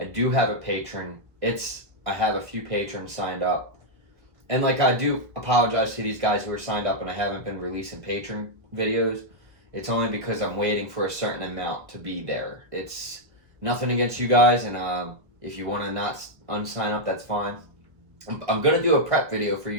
do have a patron. I have a few patrons signed up. And I do apologize to these guys who are signed up and I haven't been releasing patron videos. It's only because I'm waiting for a certain amount to be there. It's nothing against you guys, and if you want to not unsign up, that's fine. I'm going to do a prep video for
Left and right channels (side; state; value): left; late; 1.5 ms